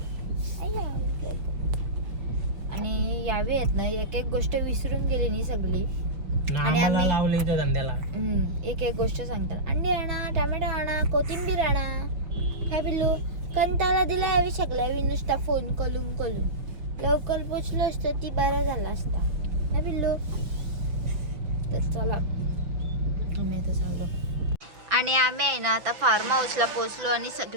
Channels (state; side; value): late; left; 5.8 ms